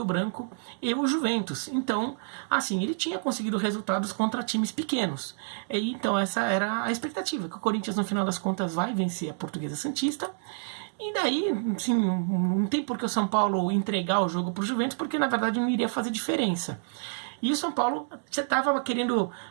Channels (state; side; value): silent; left; digital silence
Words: Branco e o Juventus. Então, assim, ele tinha conseguido resultados contra times pequenos. E, então, essa era a expectativa, que o Corinthians, no final das contas, vai vencer a Portuguesa Santista. E daí, assim, não tem por que o São Paulo entregar o jogo para o Juventus, porque, na verdade, não iria fazer diferença. E o São Paulo estava querendo